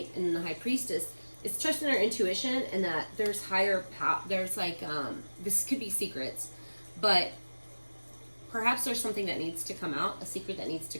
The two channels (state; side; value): inverted; both; correlation -1.00